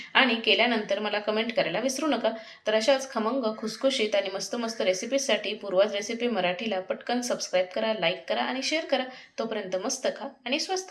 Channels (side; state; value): both; identical; correlation 1.00